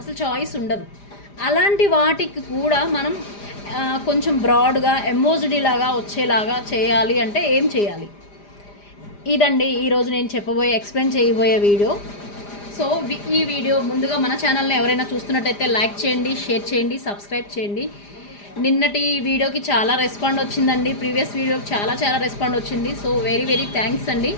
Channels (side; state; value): right; late; 4.9 ms